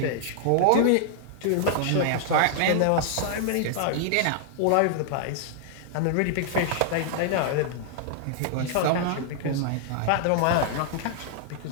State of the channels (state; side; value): different; both; correlation -0.01